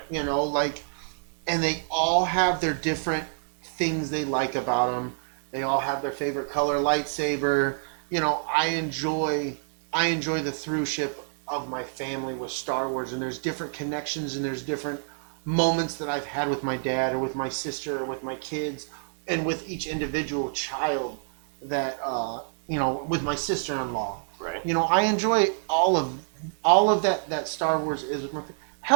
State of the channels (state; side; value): silent; left; digital silence